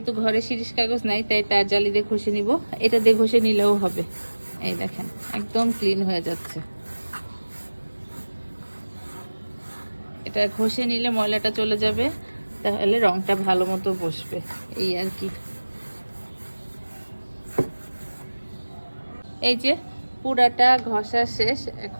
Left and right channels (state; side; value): inverted; both; correlation -1.00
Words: ঘরে শিরিষ কাগজ নাই তাই তার জালি দিয়ে ঘষে নিব। এটা দিয়ে ঘষে নিলেও হবে। এই দেখেন একদম ক্লিন হয়ে যাচ্ছে। এটা ঘষে নিলে ময়লাটা চলে যাবে, তাহলে রংটা ভালো মতো বসবে, এই আর কি। এই যে পুরাটা ঘষা শেষ,